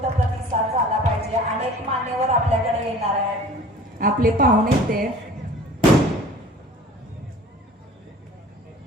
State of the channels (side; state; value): both; normal; correlation 0.45